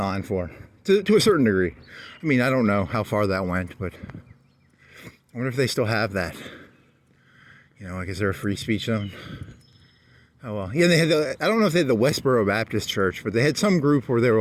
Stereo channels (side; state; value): both; identical; correlation 1.00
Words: for, to a certain degree. I mean, I don't know how far that went, but I wonder if they still have that. You know, like, is there a free speech zone? Oh, well. Yeah, they had I don't know if they had the Westboro Baptist Church, but they had some group where they were